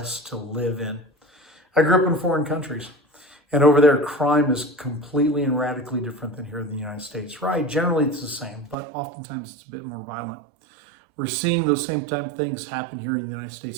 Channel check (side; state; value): left; drops out; at 8.8 s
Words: to live in. I grew up in foreign countries. And over there, crime is completely and radically different than here in the United States, right? Generally, it's the same, but oftentimes it's a bit more violent. We're seeing those same type of things happen here in the United